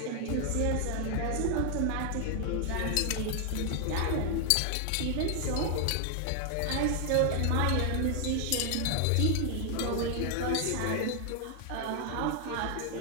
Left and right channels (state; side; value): different; both; correlation 0.00